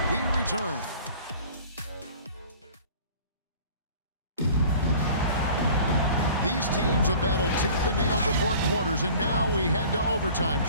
we return. These teams have battled tooth and nail for 4 quarters, and now we head to overtime.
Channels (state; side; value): inverted; both; correlation -0.46